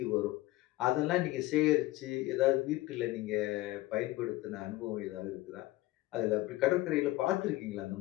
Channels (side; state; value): right; quieter; 18.1 dB